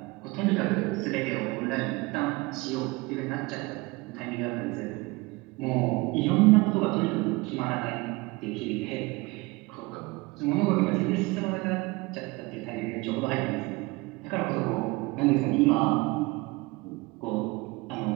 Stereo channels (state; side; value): quieter; left; 23.9 dB